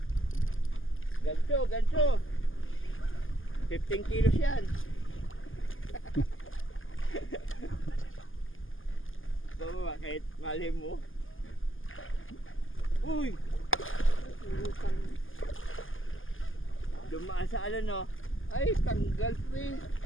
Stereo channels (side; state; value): right; late; 0.59 ms